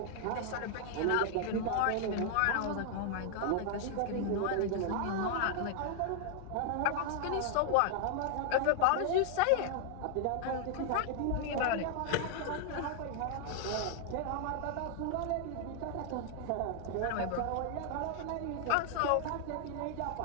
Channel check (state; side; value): different; both; correlation 0.00